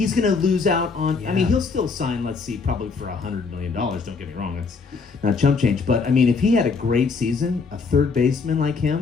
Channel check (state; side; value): quieter; right; 4.8 dB